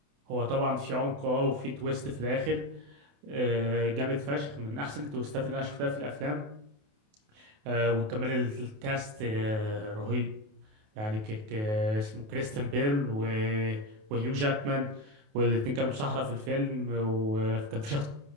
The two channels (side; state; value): left; late; 28 ms